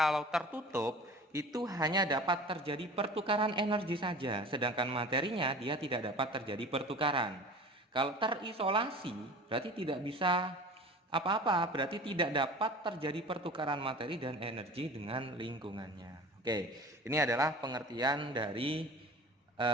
tertutup itu hanya dapat terjadi pertukaran energi saja, sedangkan materinya dia tidak dapat terjadi pertukaran. Kalau terisolasi berarti tidak bisa apa-apa, berarti tidak dapat terjadi pertukaran materi dan energi dengan lingkungannya. Oke, ini adalah pengertian dari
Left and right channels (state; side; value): normal; both; correlation 0.40